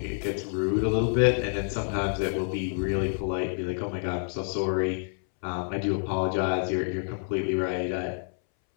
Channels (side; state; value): right; silent; 59 dB below the other